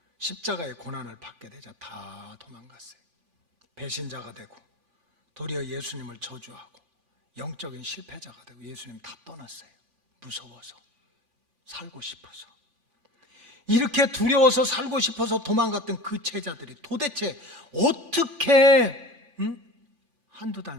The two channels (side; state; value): left; late; 3.4 ms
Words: 십자가의 고난을 받게 되자 다 도망갔어요. 배신자가 되고 도리어 예수님을 저주하고 영적인 실패자가 되고 예수님 다 떠났어요. 무서워서, 살고 싶어서. 이렇게 두려워서 살고 싶어서 도망갔던 그 제자들이 도대체 어떻게 한두 달